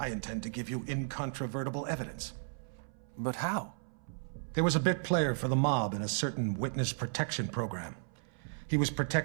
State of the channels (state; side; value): silent; left; 55 dB below the other